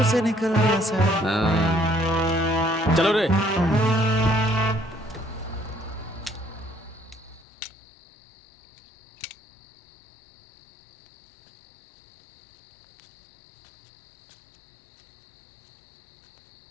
से निकल गया सर। चलो रे।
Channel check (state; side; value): drops out; right; at 7.5 s